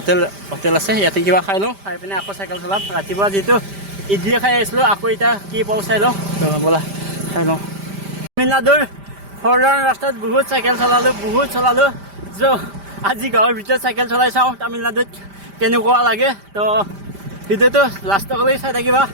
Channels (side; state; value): left; late; 5.1 ms